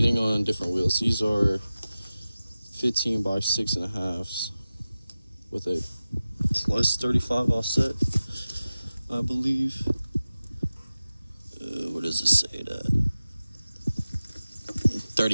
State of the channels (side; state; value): both; inverted; correlation -0.96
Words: on different wheels. These are 15 by 6.5s with a plus 35 offset, I believe. What does it say that?